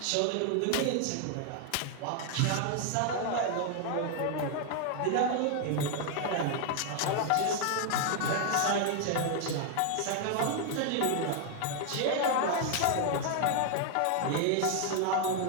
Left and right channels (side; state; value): both; different; correlation 0.00